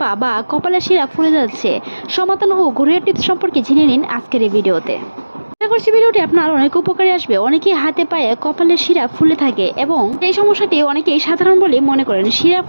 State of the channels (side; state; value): both; inverted; correlation -1.00